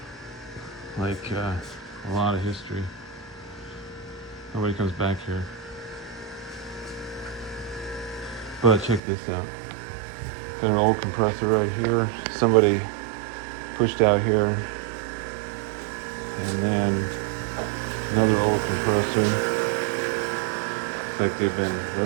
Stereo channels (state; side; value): drops out; left; at 9.0 s